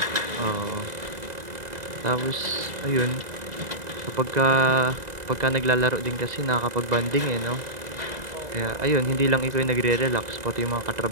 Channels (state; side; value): late; left; 2.0 ms